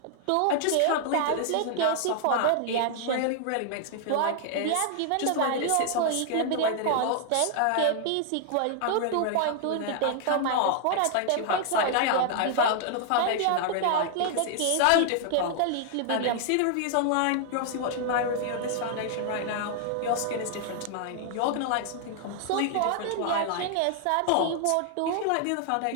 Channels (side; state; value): both; different; correlation 0.00